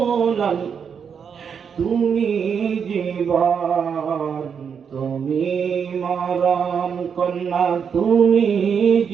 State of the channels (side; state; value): left; quieter; 6.9 dB